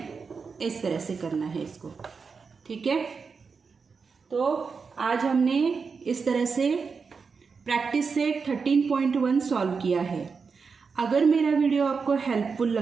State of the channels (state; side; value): quieter; left; 5.2 dB